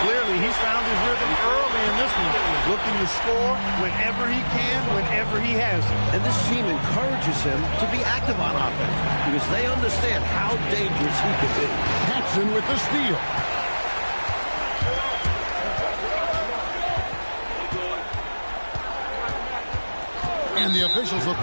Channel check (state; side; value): inverted; both; correlation -1.00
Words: Clearly, he's found his rhythm early in this one. Looking to score whenever he can, whenever he has it. And this team encourages him to be active on offense because they understand how dangerous he could be. Paxson with the steal. And the officials will